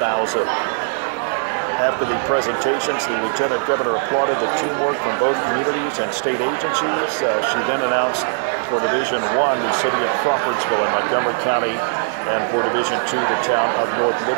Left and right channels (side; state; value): left; silent; digital silence